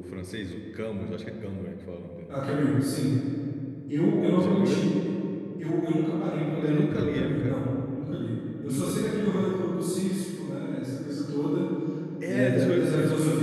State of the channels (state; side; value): identical; both; correlation 1.00